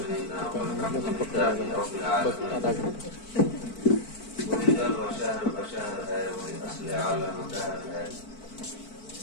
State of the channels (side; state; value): right; late; 4.5 ms